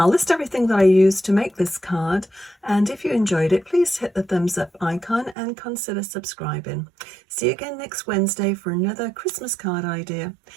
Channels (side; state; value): left; drops out; at 5.4 s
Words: list everything that I used to make this card, and if you enjoyed it, please hit the thumbs up icon and consider subscribing. See you again next Wednesday for another Christmas card idea.